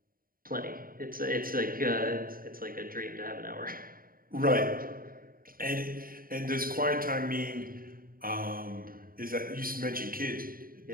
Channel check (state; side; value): late; left; 0.42 ms